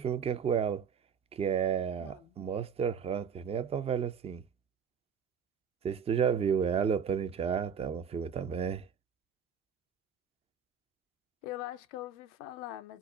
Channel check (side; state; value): left; quieter; 6.7 dB